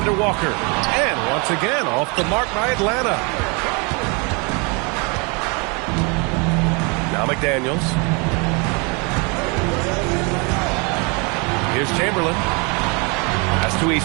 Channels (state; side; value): quieter; left; 31.5 dB